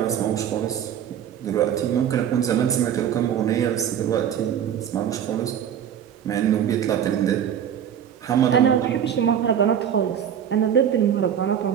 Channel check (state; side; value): quieter; left; 9.2 dB